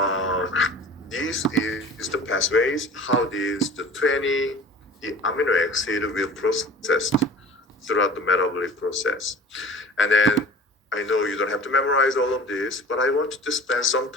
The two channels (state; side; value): normal; both; correlation 0.42